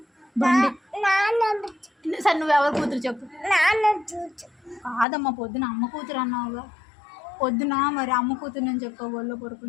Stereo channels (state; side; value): drops out; right; at 5.1 s